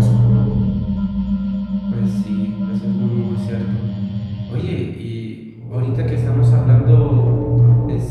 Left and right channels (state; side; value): identical; both; correlation 1.00